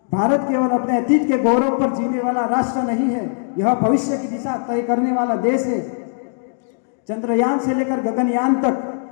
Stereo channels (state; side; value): silent; right; 66 dB below the other